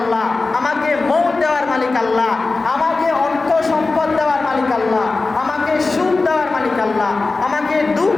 আমাকে মৌত দেওয়ার মালিক আল্লাহ, আমাকে অর্থ সম্পদ দেওয়ার মালিক আল্লাহ, আমাকে সুখ দেওয়ার মালিক আল্লাহ, আমাকে দুঃখ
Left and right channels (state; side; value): quieter; right; 3.6 dB